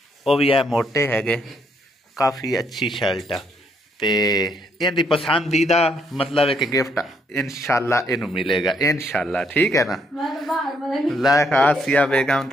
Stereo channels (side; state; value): both; normal; correlation 0.72